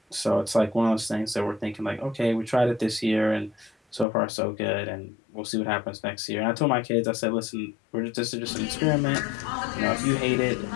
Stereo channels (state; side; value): drops out; right; at 4.0 s